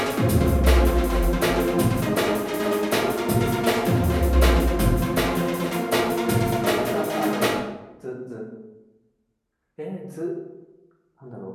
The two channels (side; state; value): both; identical; correlation 1.00